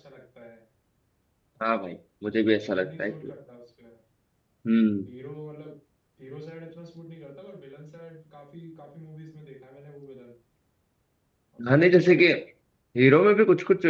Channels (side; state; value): both; identical; correlation 1.00